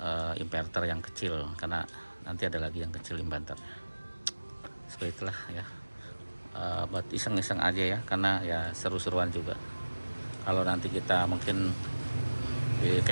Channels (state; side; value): inverted; both; correlation -1.00